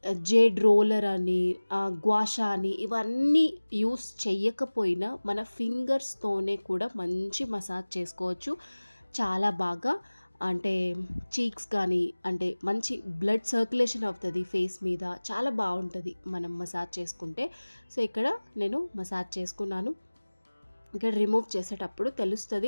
జేడ్ రోలర్ అని, గ్వాషా అని ఇవన్నీ యూస్ చెయ్యకపోయినా మన ఫింగర్స్తోనే కూడా మంచి మసాజ్ చేసుకోవచ్చు చాలా బాగా. అంటే చీక్స్ కానీ, అంటే మంచి బ్లడ్ సర్క్యులేషన్ అవుతుంది ఫేస్ మీద, చాలా బాగుంటుంది మనం మసాజ్ చేసుకుంటే. సో ఇక్కడ నేను మసాజ్ చేసుకున్నాను. ఇక్కడ రిమూవ్ చేసేటప్పుడు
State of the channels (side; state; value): both; inverted; correlation -1.00